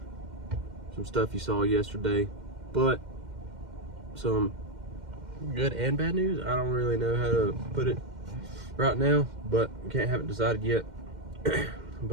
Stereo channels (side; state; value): left; late; 2.1 ms